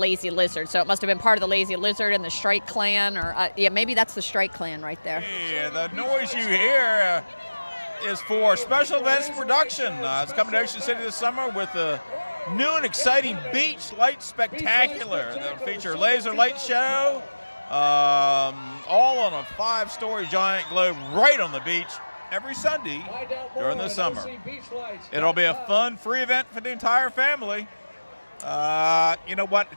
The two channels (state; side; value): inverted; both; correlation -1.00